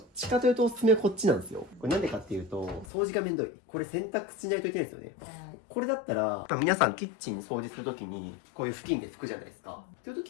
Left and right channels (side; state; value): right; drops out; at 2.9 s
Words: ちかというとおすすめはこっちなんですよ。これなんでかっていうと、掃除がめんどい。これ洗濯しないといけないですよね。はい。これだったら、皆さんキッチン掃除するときに、こういう布巾で拭くじゃないですか。っていうと